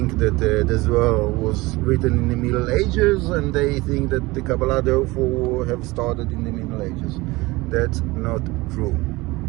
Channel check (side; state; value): left; quieter; 21.5 dB